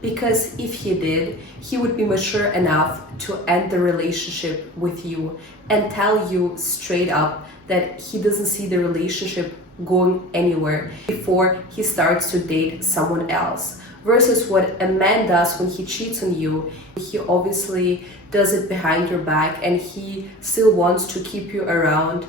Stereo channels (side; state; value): both; normal; correlation 0.36